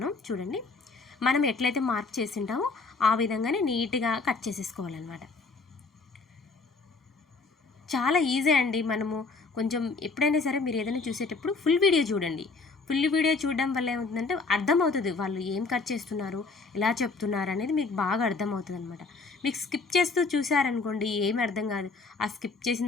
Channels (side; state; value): right; quieter; 4.1 dB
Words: చూడండి, మనం ఎట్లయితే మార్క్ చేసి ఉంటామో ఆ విధంగానే నీట్గా కట్ చేసేసుకోవాలన్నమాట. చాలా ఈజీ అండి. మనము కొంచెం ఎప్పుడైనా సరే మీరు ఏదైనా చూసేటప్పుడు ఫుల్ వీడియో చూడండి. ఫుల్ వీడియో చూడడం వల్ల ఏమవుతుందంటే అర్థమవుతుంది వాళ్ళు ఏం కట్ చేస్తున్నారు, ఎలా చెప్తున్నారు అనేది మీకు బాగా అర్థమవుతుంది అనమాట. మీకు స్కిప్ చేస్తూ చూసారనుకోండి ఏమి అర్థం కాదు. ఆ స్కిప్ చేసిన